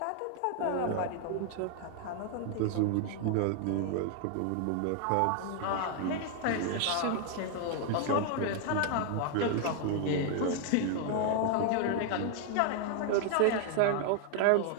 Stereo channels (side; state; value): both; different; correlation 0.00